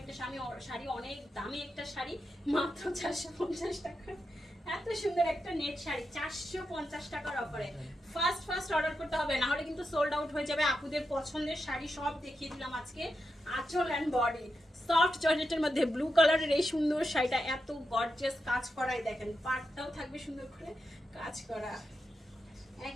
একটা শাড়ি, অনেক দামি একটা শাড়ি, মাত্র 450 টাকা। এত সুন্দর একটা নেট শাড়ি 450 টাকার অফারে। ফার্স্ট অর্ডার করতে হবে, না হলে কিন্তু সোল্ড আউট হয়ে যাবে। আপুদের পছন্দের শাড়ি সব দেখিয়ে দিলাম আজকে। আঁচল অ্যান্ড বডি সফট জর্জেটের মধ্যে ব্লু কালারের এই সুন্দর শাড়িটা, এত গর্জিয়াস কাজ করাই, দেখেন পাটটাও থাকবে সুন্দর করে কাজ করা,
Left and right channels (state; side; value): normal; both; correlation 0.88